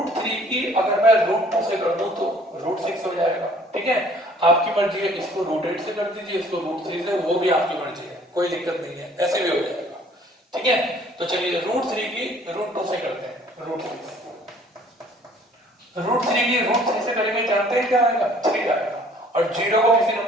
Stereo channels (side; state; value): both; normal; correlation 0.56